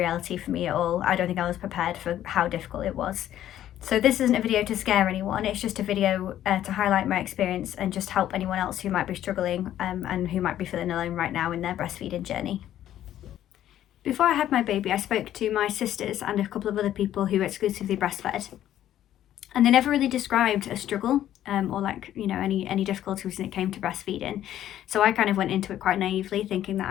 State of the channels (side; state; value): right; quieter; 11.9 dB